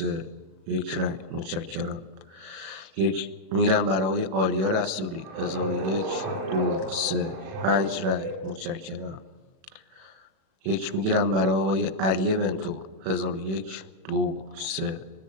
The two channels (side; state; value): left; late; 37 ms